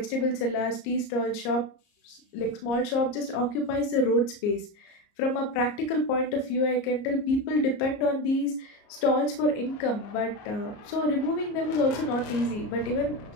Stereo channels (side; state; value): right; late; 34 ms